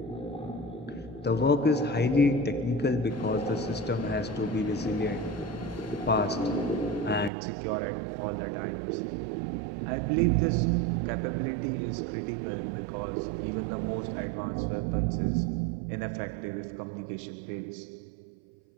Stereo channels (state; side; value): drops out; left; at 7.3 s